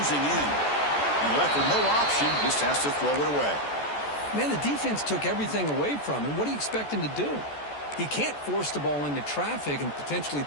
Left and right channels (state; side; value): late; right; 14 ms